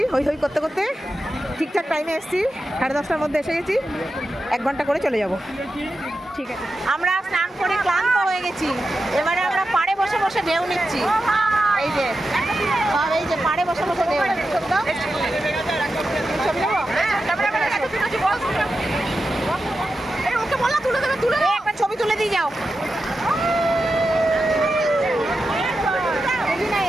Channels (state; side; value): normal; both; correlation 0.90